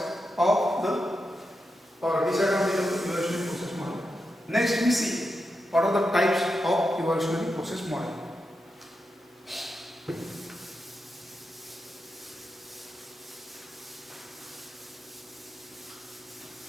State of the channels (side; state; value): both; normal; correlation 0.87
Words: of the or disadvantages of the evolutionary process model. Next we see what are the types of evolutionary process model.